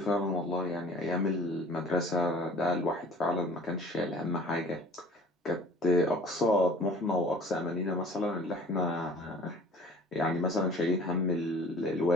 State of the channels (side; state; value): both; normal; correlation 0.49